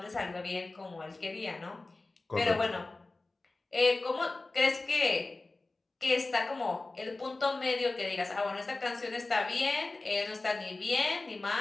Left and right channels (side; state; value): right; quieter; 3.2 dB